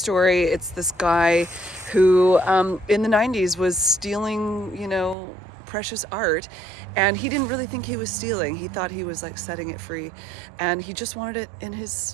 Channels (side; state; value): left; drops out; at 5.2 s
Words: It's this guy who in the 90s was stealing, precious art, and he didn't really think he was stealing. He thought he was like setting it free, and he just wanted it in